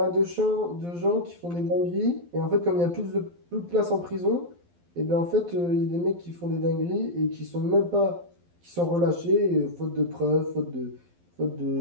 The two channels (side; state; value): left; late; 12 ms